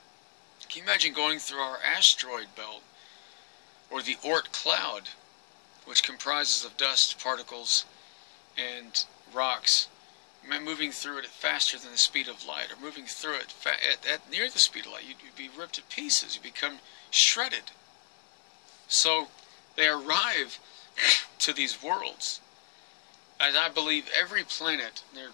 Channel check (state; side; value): silent; right; 57 dB below the other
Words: Can you imagine going through our asteroid belt, or the Oort cloud, which comprises of dust particles and rocks, moving through it at faster than the speed of light, or moving through it at near the speed of light? You'd be ripped to pieces. You become shredded. So they arrive to these worlds, and I believe every planet, there are